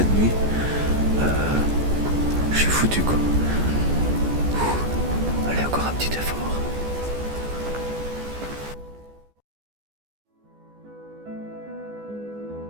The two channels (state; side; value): late; left; 14 ms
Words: nuit, je suis foutu quoi. Allez, encore un petit effort.